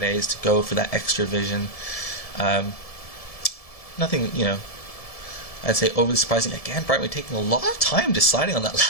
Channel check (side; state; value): right; late; 1.7 ms